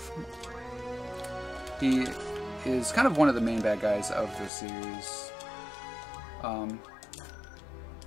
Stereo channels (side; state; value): right; drops out; at 4.5 s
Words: He is kind of one of the main bad guys of the series.